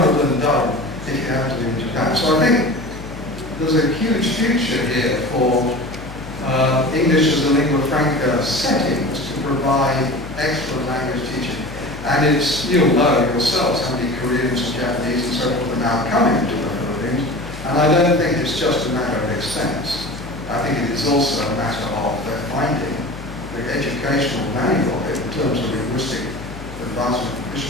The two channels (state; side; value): noise; left; hum, 13 dB below the sound